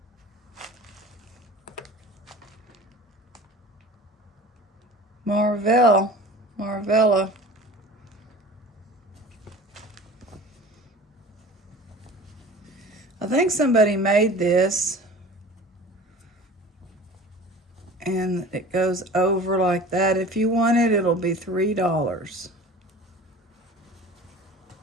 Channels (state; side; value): normal; both; correlation 0.40